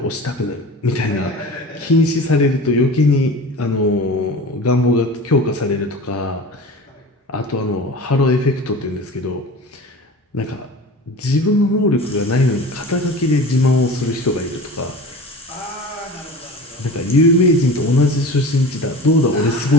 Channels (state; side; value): normal; both; correlation 0.35